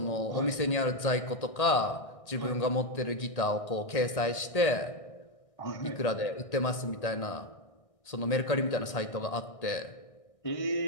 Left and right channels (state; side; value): late; right; 1.6 ms